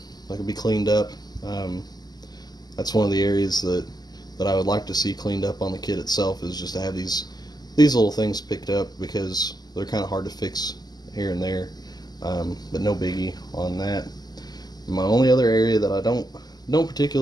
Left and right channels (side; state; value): right; late; 0.20 ms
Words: that can be cleaned up. That's one of the areas that I would like to see cleaned up on the kit itself, is just to have these little things picked up, because they're kind of hard to fix here and there, but no biggie on that. My only other area that I don't